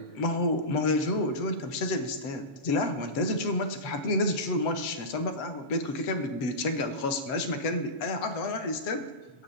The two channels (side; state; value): right; late; 7.2 ms